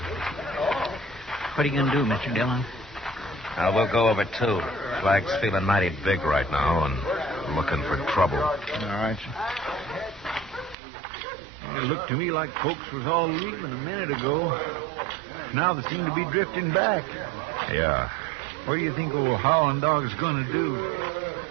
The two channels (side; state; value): left; drops out; at 10.8 s